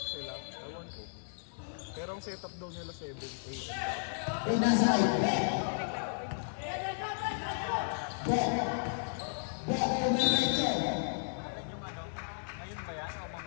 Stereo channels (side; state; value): right; silent; digital silence